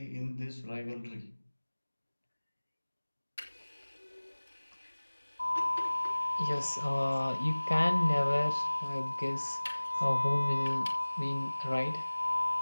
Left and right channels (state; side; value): inverted; both; correlation -1.00